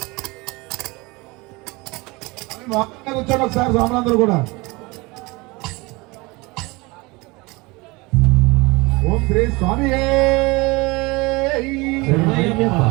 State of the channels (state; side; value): quieter; left; 24.4 dB